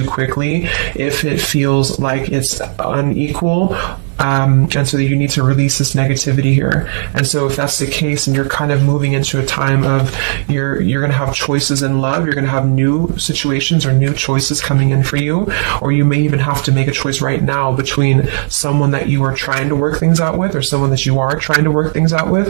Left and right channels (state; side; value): silent; left; digital silence